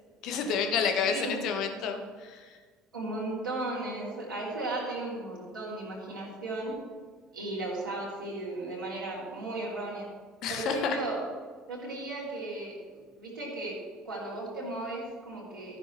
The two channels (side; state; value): both; normal; correlation 0.39